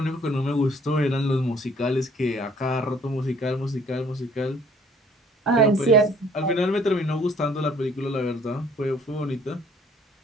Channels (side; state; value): both; normal; correlation 0.58